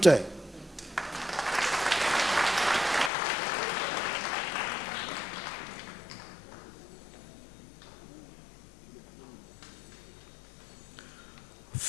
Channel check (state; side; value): drops out; right; at 3.1 s